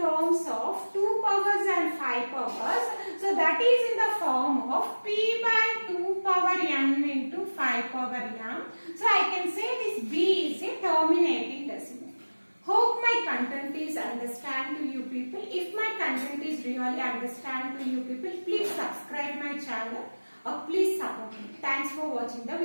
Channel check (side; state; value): both; inverted; correlation -1.00